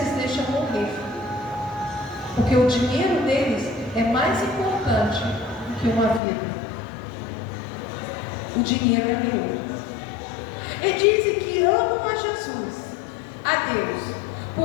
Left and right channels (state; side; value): drops out; right; at 6.2 s